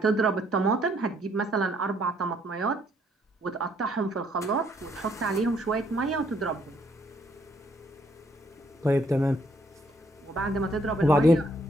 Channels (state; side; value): normal; both; correlation 0.69